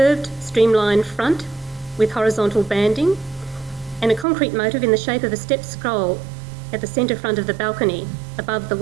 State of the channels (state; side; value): drops out; left; at 4.2 s